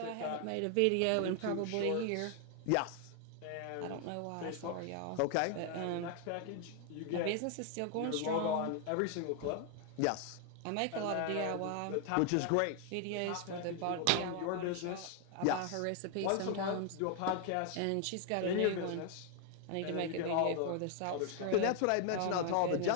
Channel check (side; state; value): both; different; correlation 0.00